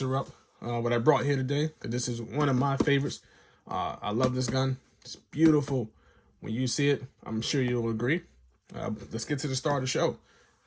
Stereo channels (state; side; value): identical; both; correlation 1.00